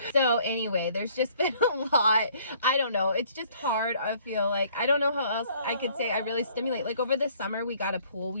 So anyway, there's just been a lot. I don't know, it's just hard. I feel like I don't know how else I could say I really stimulate. Like over the summer we got a pool. We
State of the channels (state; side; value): inverted; both; correlation -0.60